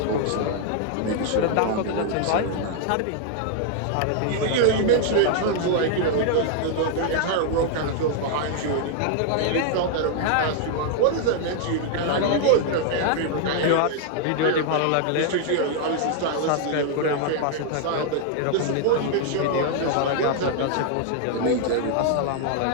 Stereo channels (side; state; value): both; different; correlation 0.00